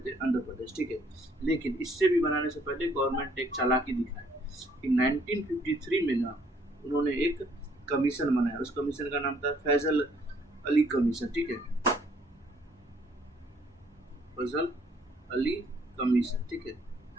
हैं आंध्र प्रदेश, ठीक है। लेकिन इससे भी बनाने से पहले गवर्नमेंट ने एक चालाकी दिखाई कि 1953 में ना उन्होंने एक कमीशन बनाया। उस कमीशन का नाम था फैजल अली कमीशन, ठीक है, फैजल अली कमीशन, ठीक है।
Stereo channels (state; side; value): normal; both; correlation 0.64